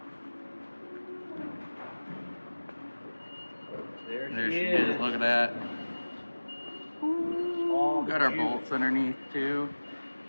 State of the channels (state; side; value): inverted; both; correlation -1.00